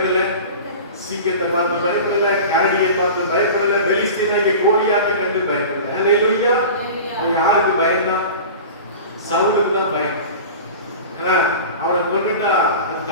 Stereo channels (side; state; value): both; inverted; correlation -0.34